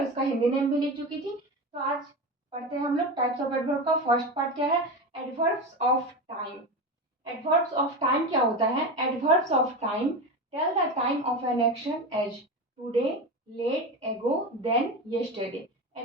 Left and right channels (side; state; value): both; normal; correlation 0.22